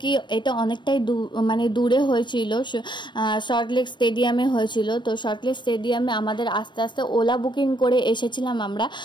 কি এটা অনেকটাই দূরে হয়েছিল, সল্টলেক স্টেডিয়ামে হয়েছিল। তো সল্টলেক স্টেডিয়ামে আমাদের আস্তে আস্তে ওলা বুকিং করে এসেছিলাম আমরা।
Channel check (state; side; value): late; right; 0.22 ms